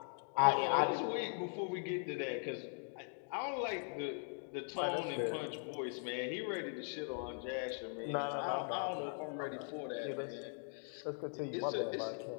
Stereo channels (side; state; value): right; silent; 51 dB below the other